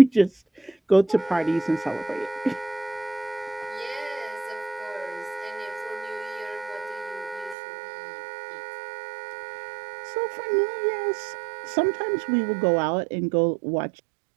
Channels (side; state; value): left; drops out; at 7.6 s